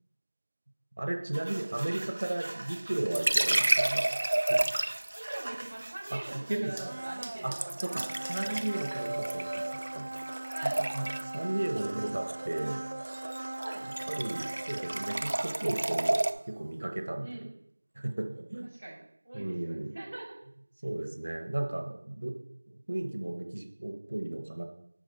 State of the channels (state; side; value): inverted; both; correlation -1.00